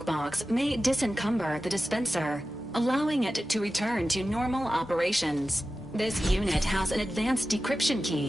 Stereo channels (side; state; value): both; normal; correlation 0.94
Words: may disencumber the dispenser, allowing it to return to normal operations. This unit has an advanced decryption